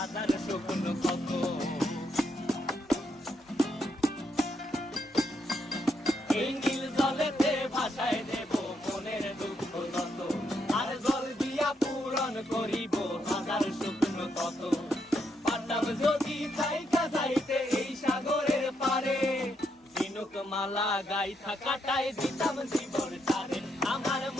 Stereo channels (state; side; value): normal; both; correlation 0.78